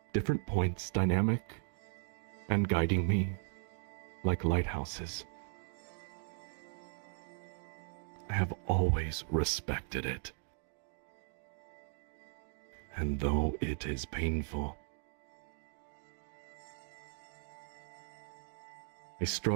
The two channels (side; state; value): left; silent; 53 dB below the other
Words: different points dynamic, and guiding me like lighthouses. I have always respected it. And though it is painful, I